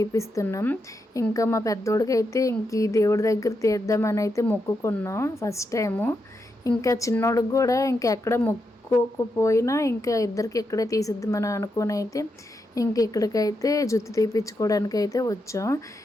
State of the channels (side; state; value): both; normal; correlation 0.84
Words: ఇంకా మా పెద్దోడికి అయితే ఇంక ఈ దేవుడి దగ్గర తీద్దామని అయితే మొక్కుకున్నాం ఫస్ట్ టైము. ఇంకా చిన్నోడికి కూడా ఇంకెక్కడ మొక్కుకోకపోయినా ఇంకా ఇద్దరికి ఇక్కడే తీసిద్దామని అనుకుని అయితే ఇంక ఇక్కడికైతే జుత్తు తీపించుకోవడానికి అయితే వచ్చాం.